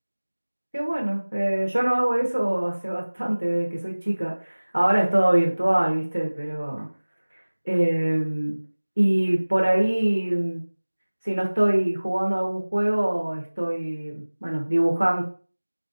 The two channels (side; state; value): both; inverted; correlation -1.00